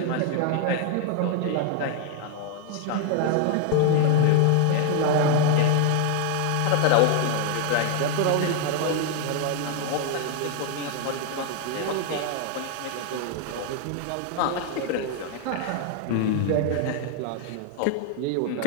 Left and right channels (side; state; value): both; different; correlation 0.00